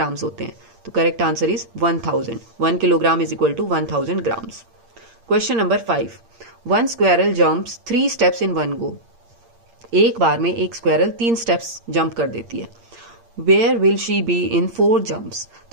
होते हैं? तो correct answer is 1000. 1 kilogram is equal to 1000 grams. Question number 5. 1 squirrel jumps 3 steps in 1 go. एक बार में एक स्क्वेरल 3 स्टेप्स जंप कर देती है. Where will she be in 4 jumps?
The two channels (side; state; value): left; late; 8.7 ms